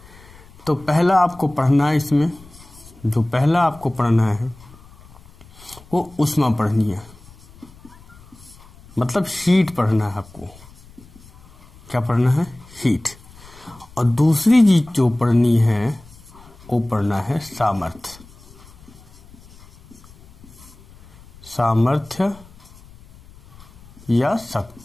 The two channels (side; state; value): left; noise; rumble, 23 dB below the sound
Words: तो पहला आपको पढ़ना है, इसमें जो पहला आपको पढ़ना है वो ऊष्मा पढ़नी है, मतलब हीट पढ़ना है आपको। क्या पढ़ना है? हीट। और दूसरी चीज जो पढ़नी है वो पढ़ना है सामर्थ्य। सामर्थ्य या